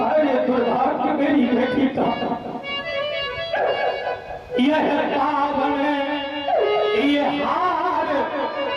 दुर्भाग्य मेरी बेटी का यह पावन ये हार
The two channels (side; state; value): both; identical; correlation 1.00